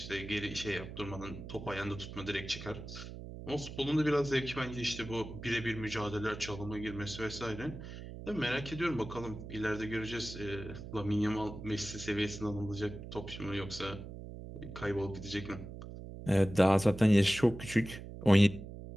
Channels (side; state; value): right; noise; hum, 11 dB below the sound